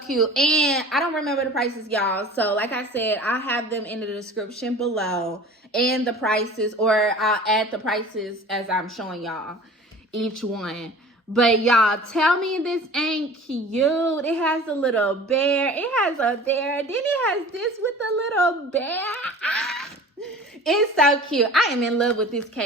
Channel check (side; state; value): both; normal; correlation 0.41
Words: And I don't remember the prices, y'all. So like I said, I have them in the description below and the prices, or I'll add the prices as I'm showing y'all each one. But y'all, tell me this ain't cute. It has a little bear. It has a bear. Then it has this with a little bear. It's so cute. I am in love with this